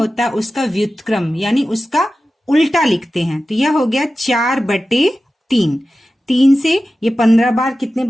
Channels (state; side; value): normal; both; correlation 0.94